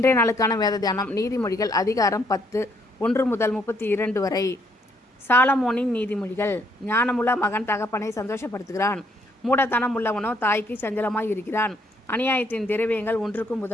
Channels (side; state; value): both; normal; correlation 0.69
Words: நாளுக்கான வேத தியானம் நீதிமொழிகள் அதிகாரம் 10 1 முதல் 32 வரை. சாலமோனின் நீதிமொழிகள். ஞானமுள்ள மகன் தகப்பனை சந்தோஷப்படுத்துகிறான், மூடத்தனம் உள்ளவனோ தாய்க்கு சஞ்சலமாய் இருக்கிறான். அநியாயத்தின் திரவியங்கள் ஒன்றுக்கும்